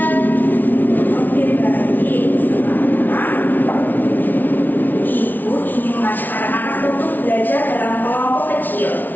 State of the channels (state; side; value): late; right; 0.085 ms